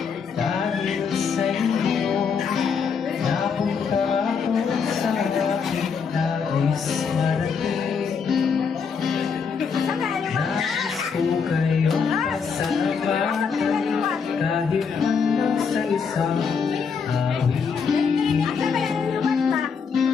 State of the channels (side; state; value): right; quieter; 6.0 dB